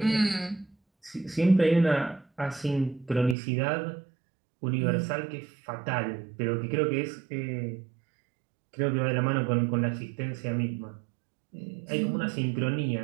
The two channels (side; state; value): left; drops out; at 3.4 s